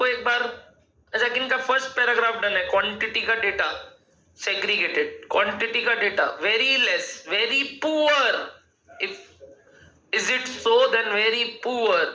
एक बार। अच्छा, किनका फर्स्ट पैराग्राफ डन है? क्वांटिटी का डेटा सेग्रीगेटेड, क्वांटिटी का data very less, very poor. If is it so then very poor,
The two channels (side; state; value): both; identical; correlation 1.00